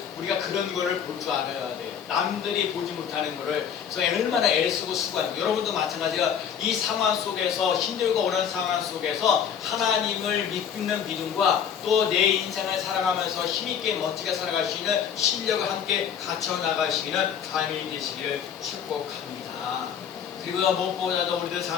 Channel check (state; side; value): quieter; right; 8.1 dB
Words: 우리가 그런 거를 볼 줄 알아야 돼요. 남들이 보지 못하는 거를. 그래서 얼마나 애쓰고 수고하는 거. 여러분도 마찬가지가 이 상황 속에서 힘들고 어려운 상황 속에서 하나님을 믿는 믿음과 또 내 인생을 살아가면서 힘있게 멋지게 살아갈 수 있는 실력을 함께 갖춰 나가시는 삶이 되시기를 축복합니다. 그리고 무엇보다도 우리들